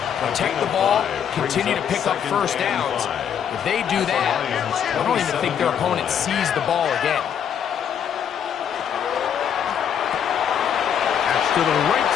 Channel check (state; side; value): quieter; right; 8.5 dB